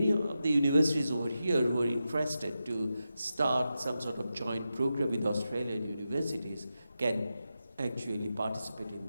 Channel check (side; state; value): both; inverted; correlation -0.90